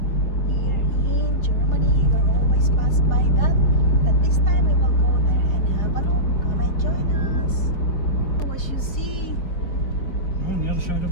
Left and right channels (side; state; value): right; late; 4.7 ms